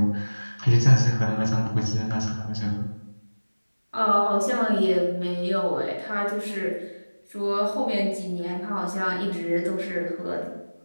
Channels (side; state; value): both; inverted; correlation -1.00